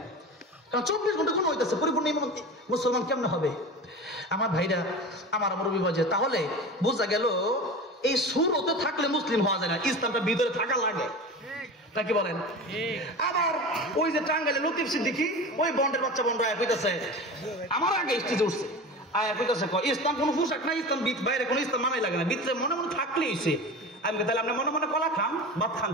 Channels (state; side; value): normal; both; correlation 0.31